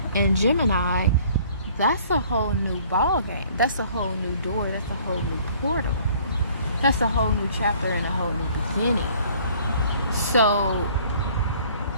in Gemini, that's a whole new ball game. That's a whole new door. That's a whole new portal. That's a whole new chapter and a whole new beginning. So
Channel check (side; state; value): both; inverted; correlation -0.56